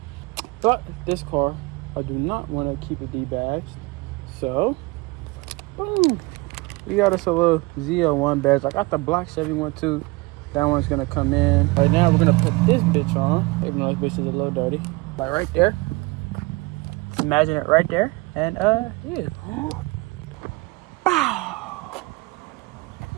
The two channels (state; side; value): quieter; left; 24.3 dB